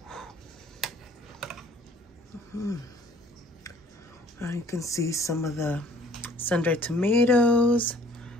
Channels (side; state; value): both; normal; correlation 0.55